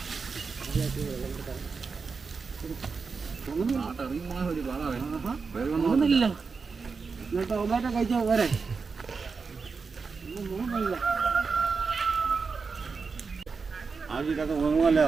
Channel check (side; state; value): left; quieter; 4.9 dB